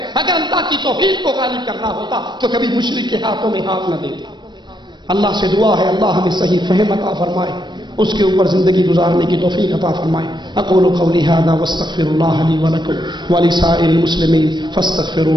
اگر اللہ کی توحید کو غالب کرنا ہوتا تو کبھی مشرک کے ہاتھوں میں ہاتھ نہ دیتے۔ اللہ سے دعا ہے اللہ ہمیں صحیح فہم عطا فرمائے، اس کے اوپر زندگی گزارنے کی توفیق عطا فرمائے۔ اقول قولی ھذا واستغفر اللہ لی ولکم ولسائر المسلمین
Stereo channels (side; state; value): left; late; 0.22 ms